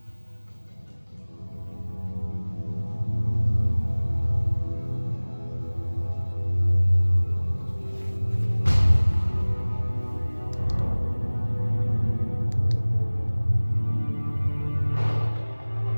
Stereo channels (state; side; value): inverted; both; correlation -1.00